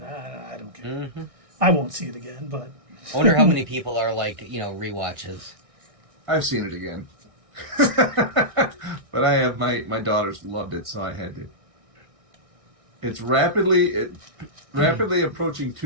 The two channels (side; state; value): left; late; 1.6 ms